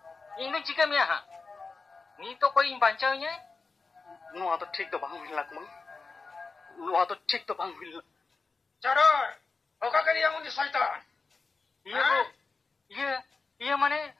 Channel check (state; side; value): quieter; right; 4.3 dB